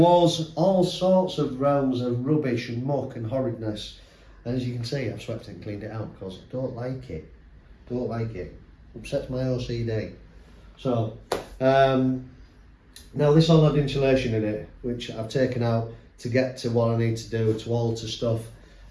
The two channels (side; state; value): both; identical; correlation 1.00